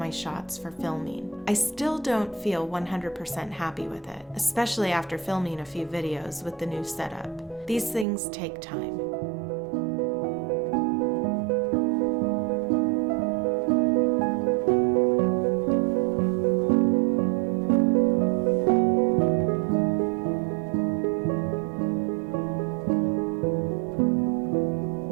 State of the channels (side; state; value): left; drops out; at 8.1 s